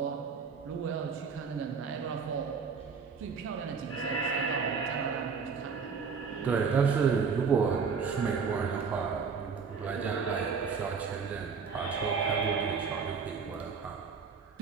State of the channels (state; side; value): quieter; left; 5.6 dB